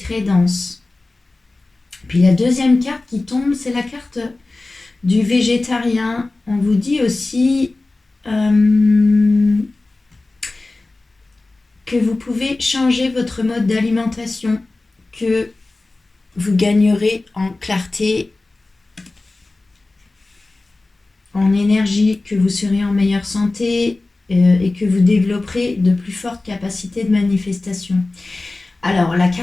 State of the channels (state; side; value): quieter; right; 3.2 dB